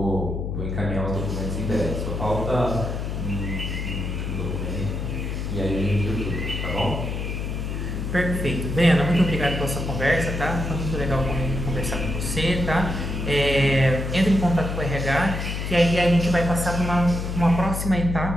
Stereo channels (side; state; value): left; noise; hum, 3 dB below the sound